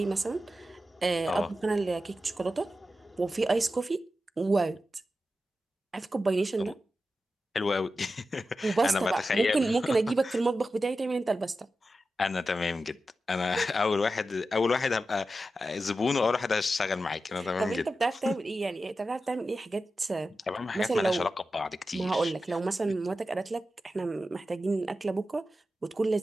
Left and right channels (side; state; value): both; normal; correlation 0.92